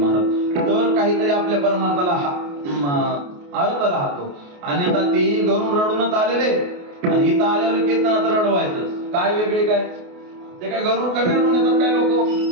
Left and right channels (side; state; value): left; late; 28 ms